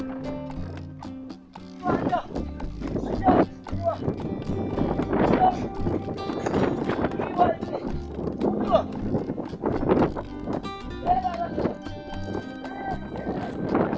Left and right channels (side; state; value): both; identical; correlation 1.00